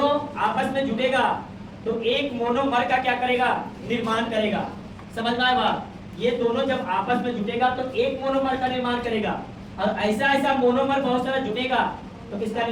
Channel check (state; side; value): identical; both; correlation 1.00